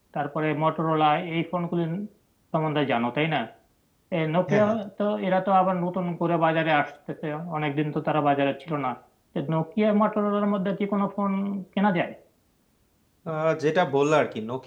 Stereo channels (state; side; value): identical; both; correlation 1.00